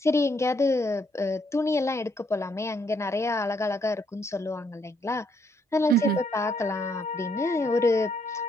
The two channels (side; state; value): both; normal; correlation 0.72